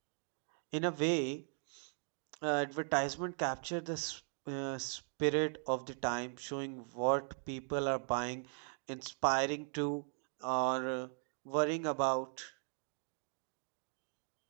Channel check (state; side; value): silent; left; 52 dB below the other